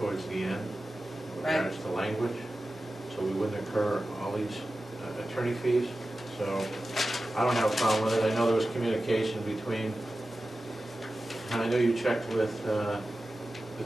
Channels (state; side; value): normal; both; correlation 0.94